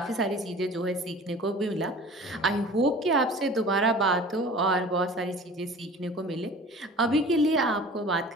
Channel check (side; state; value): both; normal; correlation 0.42